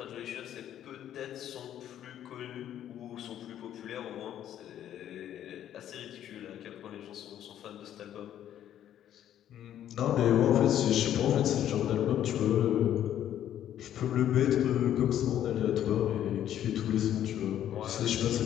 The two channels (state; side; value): quieter; right; 11.0 dB